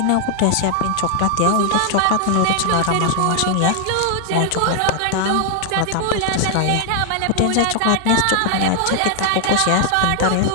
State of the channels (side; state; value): both; different; correlation 0.00